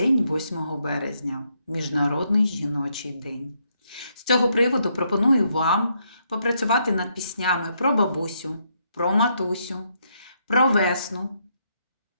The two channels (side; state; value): both; inverted; correlation -0.75